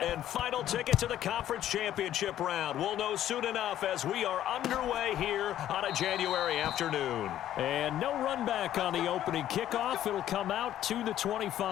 and final ticket to the conference championship round? We'll know soon enough as we are underway here on a January afternoon. And no run back on the opening kickoff. It'll come out to the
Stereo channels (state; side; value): quieter; right; 11.9 dB